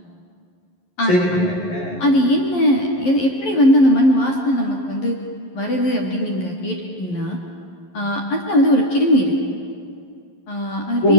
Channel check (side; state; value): right; late; 11 ms